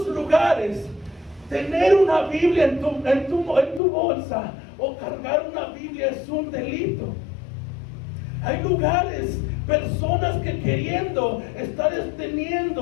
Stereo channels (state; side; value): drops out; right; at 3.8 s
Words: lugares tener una Biblia en tu bolsa o cargar una Biblia es un delito. Hay lugares, personas que queriendo estar